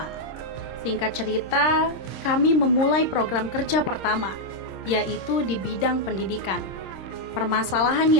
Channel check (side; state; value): right; late; 26 ms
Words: Singkat cerita, kami memulai program kerja pertama, yaitu di bidang pendidikan. Permasalahan